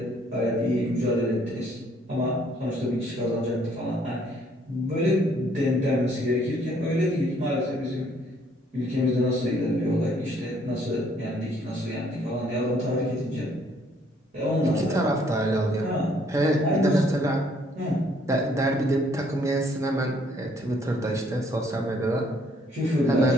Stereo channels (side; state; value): both; normal; correlation 0.64